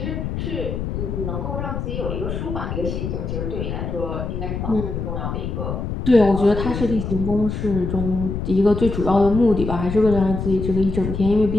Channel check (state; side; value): noise; left; rumble, 4 dB below the sound